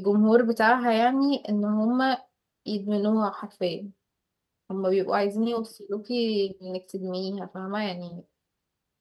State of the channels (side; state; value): both; identical; correlation 1.00